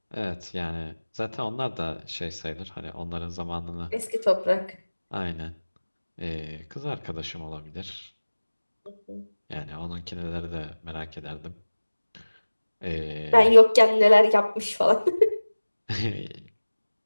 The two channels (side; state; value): both; inverted; correlation -1.00